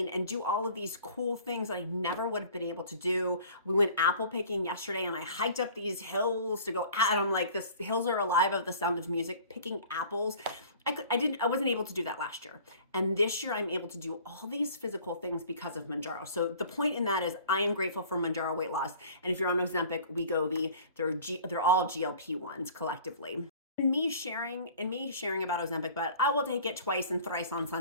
and do all of these cool things that I never would have been able to do. We went apple picking yesterday and I hiked up these hills to go at them. Like, the hills are alive of the sound of music, picking apples. I wasn't able to do that last year. And this year I'm able to do all these physical things because of Mounjaro. So the point in that is I am grateful for Mounjaro weight loss. And if you're on Ozempic, WEGOVY, they're all GLP-1s collectively. In me sharing about Ozempic butt, I will take it twice and thrice on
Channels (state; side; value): inverted; both; correlation -0.47